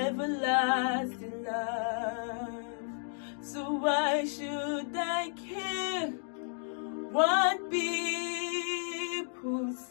love. So why should I care what people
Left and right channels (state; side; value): silent; right; 56 dB below the other